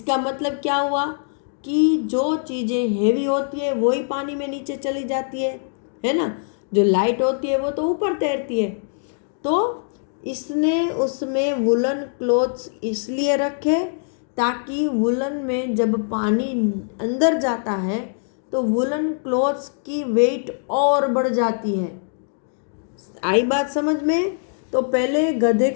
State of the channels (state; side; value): silent; right; digital silence